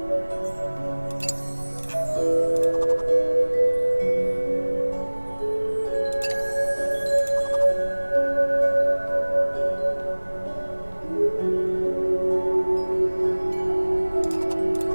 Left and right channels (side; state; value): both; inverted; correlation -1.00